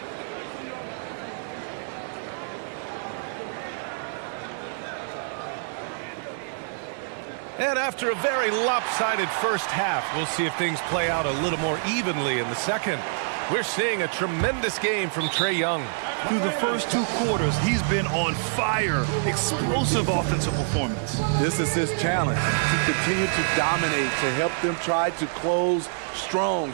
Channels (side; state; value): left; silent; digital silence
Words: And after a very lopsided first half, we'll see if things play out a little more evenly in the second. We're seeing a tremendous game from Trae Young. Through the first 2 quarters, he's been on fire. Explosive offensive performance. This is his challenge, to continue to dominate, to help them try to close strong